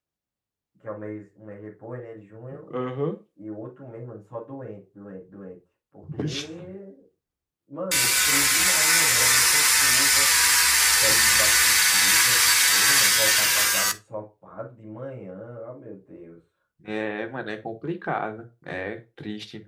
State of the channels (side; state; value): both; identical; correlation 1.00